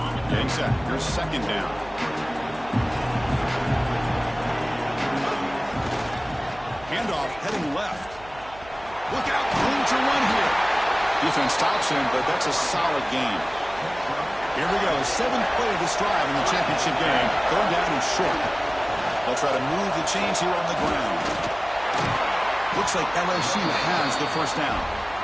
Getting set. Here's 2nd down. Handoff heading left. Look out, room to run here. Defense stops him, but that's a solid gain. Here we go, 7th play of this drive in the championship game. Going down and short. They'll try to move the chains here on the ground. Looks like LSU has the 1st down.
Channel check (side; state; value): right; noise; hum, 20 dB below the sound